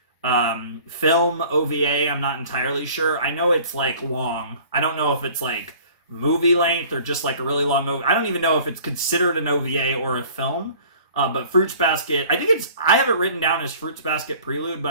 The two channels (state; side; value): inverted; both; correlation -0.49